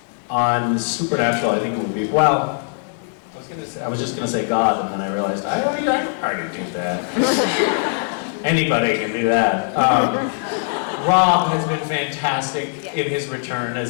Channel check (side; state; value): right; silent; digital silence